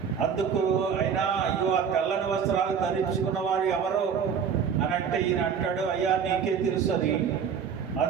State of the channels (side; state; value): left; quieter; 7.1 dB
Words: అందుకు ఆయన, అయ్యో ఆ తెల్లని వస్త్రాలు ధరించుకున్న వారు ఎవరు అని అంటే ఈయన అంటాడు, అయ్యా నీకే తెలుసు అని.